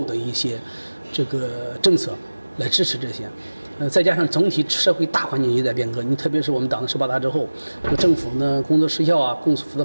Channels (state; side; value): inverted; both; correlation -1.00